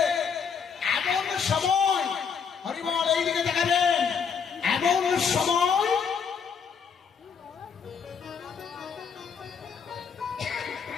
এমন সময়, হরিবল এইদিকে দেখাবেন, এমন সময়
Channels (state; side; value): quieter; right; 6.5 dB